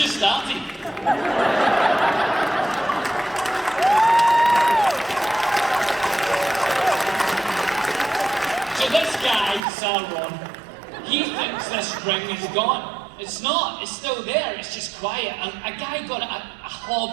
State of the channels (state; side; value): drops out; left; at 9.7 s